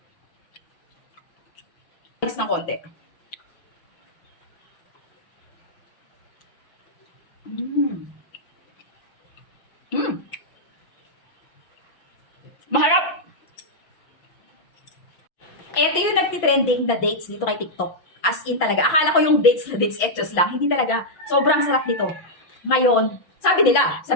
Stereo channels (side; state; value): right; late; 5.9 ms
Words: Next ng konti. Maharap! Ito yung nagtitrending na dates dito kay TikTok. As in talaga. Akala ko yung dates na dates etchos lang. Hindi talaga. Sobrang sarap nito. Ngayon, sabi nila sa